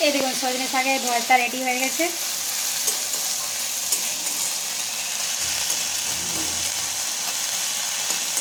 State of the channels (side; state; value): both; identical; correlation 1.00